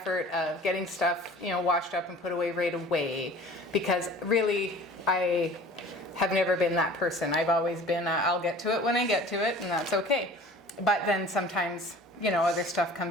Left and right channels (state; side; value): normal; both; correlation 0.45